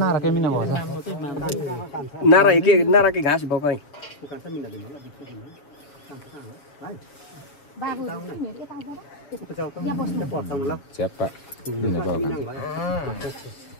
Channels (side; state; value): right; late; 6.8 ms